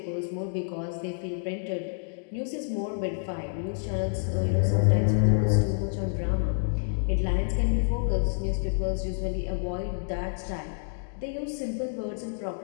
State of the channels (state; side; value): silent; right; digital silence